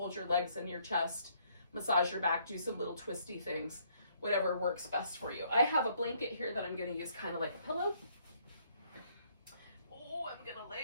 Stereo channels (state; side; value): inverted; both; correlation -0.67